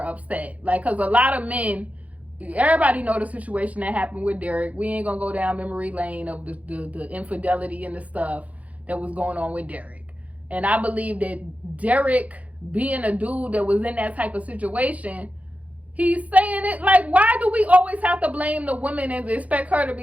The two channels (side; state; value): left; late; 0.068 ms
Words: upset. Like, because a lot of men, everybody know the situation that happened with Derek. We ain't gonna go down memory lane of the infidelity and the stuff that was going on with Derek. And I believe that Derek, being a dude that was in that type of situation, he's saying it like, why do we always have to blame the woman and expect her to